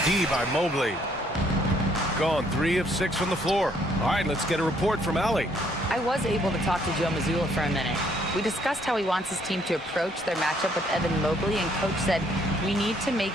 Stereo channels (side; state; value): both; normal; correlation 0.67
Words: D by Mobley. Gone 3 of 6 from the floor. All right, let's get a report from Allie. I was able to talk to Joe Mazzulla for a minute. We discussed how he wants his team to approach their matchup with Evan Mobley, and Coach said we need to make